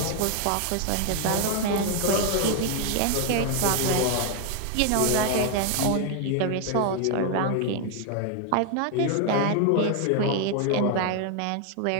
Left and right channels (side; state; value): both; different; correlation 0.01